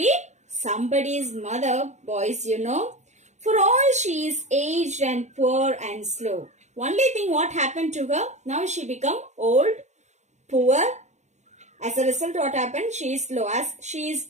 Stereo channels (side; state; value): left; late; 0.33 ms